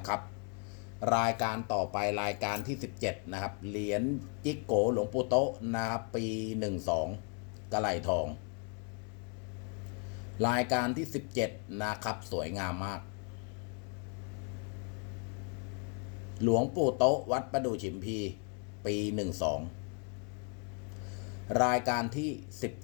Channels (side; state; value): right; quieter; 39.6 dB